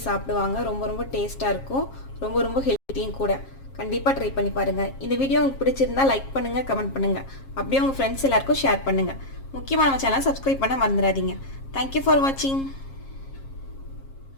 சாப்பிடுவாங்க. ரொம்ப ரொம்ப டேஸ்ட்டாக இருக்கும். ரொம்ப ரொம்ப ஹெல்த்தியும் கூட. கண்டிப்பாக ட்ரை பண்ணி பாருங்கள். இந்த வீடியோ உங்களுக்கு பிடிச்சிருந்தா லைக் பண்ணுங்கள், கமெண்ட் பண்ணுங்கள். அப்படியே உங்கள் ஃப்ரெண்ட்ஸ் எல்லாருக்கும் ஷேர் பண்ணுங்கள். முக்கியமாக நம்ம சேனலை சப்ஸ்கிரைப் பண்ண மறந்துடாதீங்க. தேங்க்யூ ஃபார் வாட்சிங்.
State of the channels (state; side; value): late; right; 7.4 ms